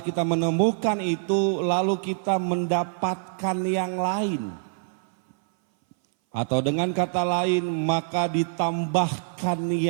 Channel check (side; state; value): left; silent; 59 dB below the other